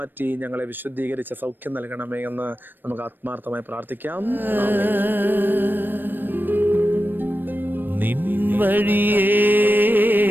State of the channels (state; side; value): late; left; 0.093 ms